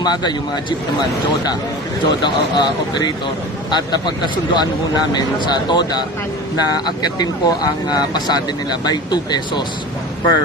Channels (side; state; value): both; normal; correlation 0.34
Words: yung mga jeep naman, JODA operator. At pagkasunduan po namin sa TODA na akyatin po ang pasade nila by 2 pesos